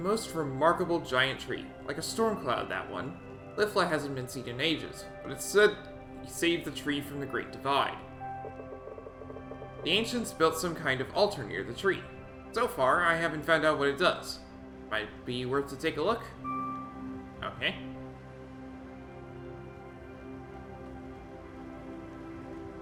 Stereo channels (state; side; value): identical; both; correlation 1.00